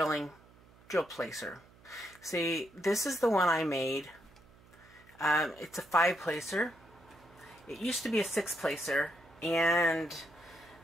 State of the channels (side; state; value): right; noise; hum, 26 dB below the sound